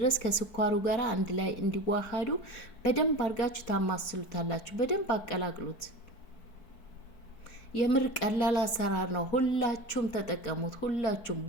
ከስኳሩ ጋር አንድ ላይ እንዲዋሃዱ በደንብ አድርጋችሁ ታማስሉታላችሁ። በደንብ አቀላቅሉት። የምር ቀላል አሰራር ነው። ሁላችሁም ተጠቀሙት። ሁላችሁም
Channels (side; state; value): right; late; 4.6 ms